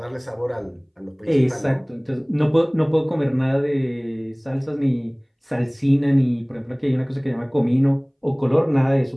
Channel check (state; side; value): identical; both; correlation 1.00